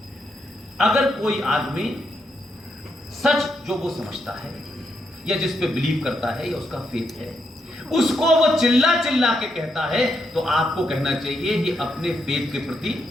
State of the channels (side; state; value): both; normal; correlation 0.80